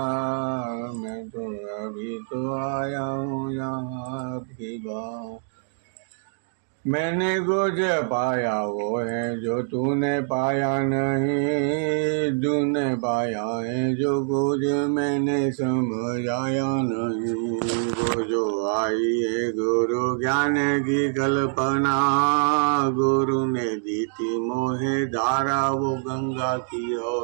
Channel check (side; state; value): left; silent; digital silence